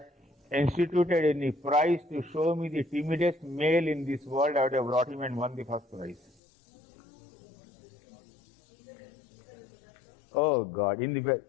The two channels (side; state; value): right; drops out; at 6.3 s